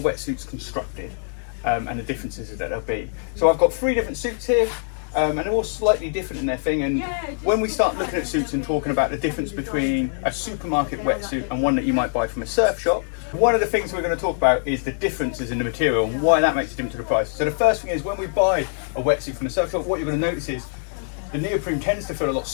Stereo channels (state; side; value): silent; right; digital silence